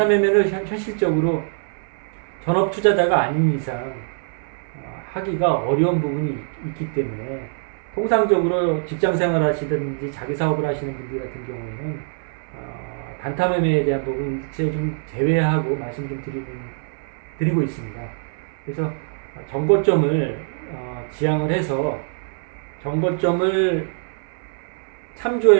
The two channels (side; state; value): left; silent; 58 dB below the other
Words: 매매를 현실적으로 전업 투자자가 아닌 이상 하기가 어려운 부분이 있기 때문에 통상적으로 직장 생활 하시든지 자기 사업을 하시는 분들 같은 경우에는 단타 매매에 대한 부분 일체 좀 제외하고 말씀 좀 드리고 있습니다. 그래서 전고점을 지향을 해서 전고점을